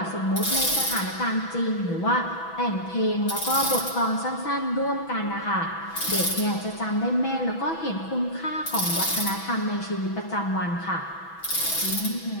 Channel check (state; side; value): late; right; 6.1 ms